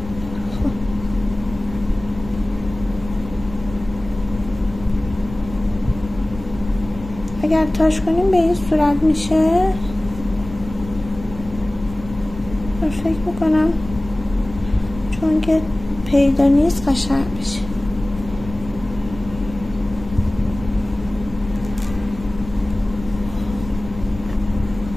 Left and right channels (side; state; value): left; noise; rumble, 13 dB below the sound